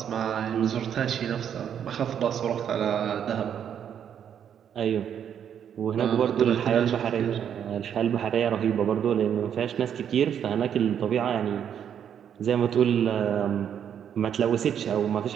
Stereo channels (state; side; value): quieter; left; 8.8 dB